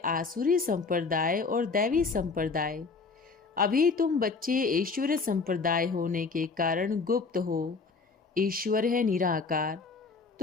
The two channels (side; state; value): right; quieter; 4.5 dB